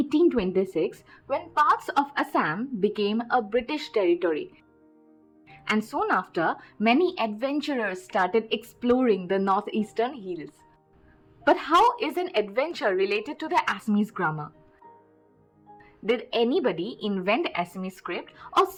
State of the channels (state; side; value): identical; both; correlation 1.00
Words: when parts of Assam became a British territory. And soon after, many adventurers started exploring the northeastern hills. But how is an adventure related to the Assamese grammar? Did anybody invent Assamese script or